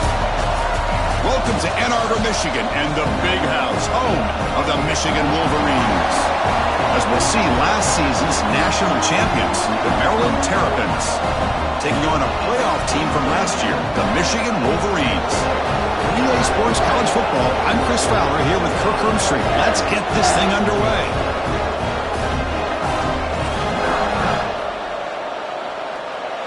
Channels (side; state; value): both; identical; correlation 1.00